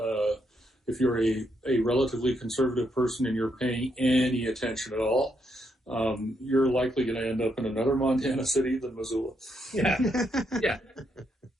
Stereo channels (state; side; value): normal; both; correlation 0.78